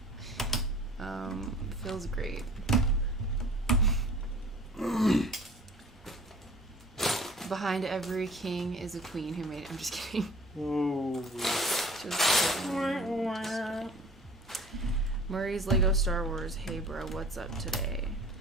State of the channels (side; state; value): both; normal; correlation 0.47